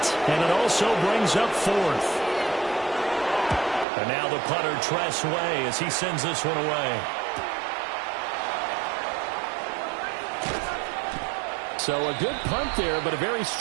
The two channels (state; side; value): drops out; left; at 3.9 s